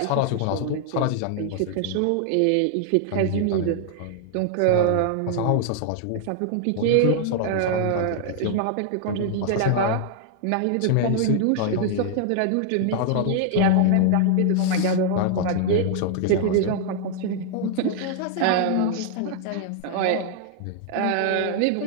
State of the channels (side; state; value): both; different; correlation 0.00